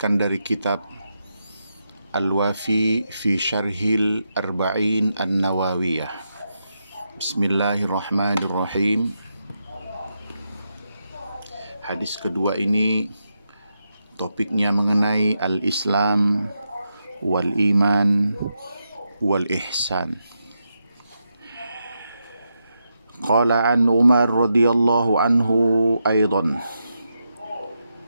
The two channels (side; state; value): both; inverted; correlation -0.85